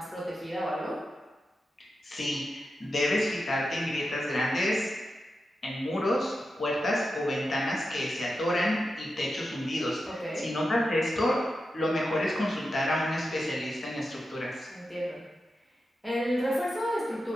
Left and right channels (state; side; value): normal; both; correlation 0.90